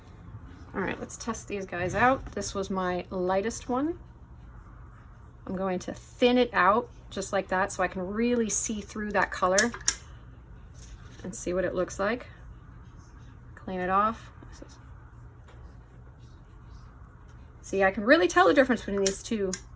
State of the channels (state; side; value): identical; both; correlation 1.00